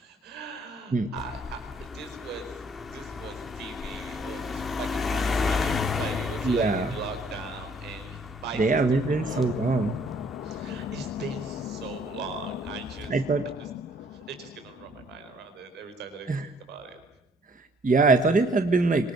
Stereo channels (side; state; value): both; normal; correlation 0.62